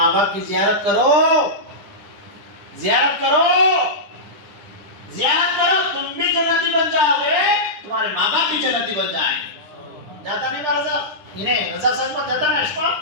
باپ کی زیارت کرو زیارت کرو تم بھی جنتی بن جاؤ گے تمہارے ماں باپ بھی جنتی بن جائیں جاتا نہیں با رضا انہیں رضا صاحب کو جاتا نا اشفا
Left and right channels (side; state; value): left; late; 9.9 ms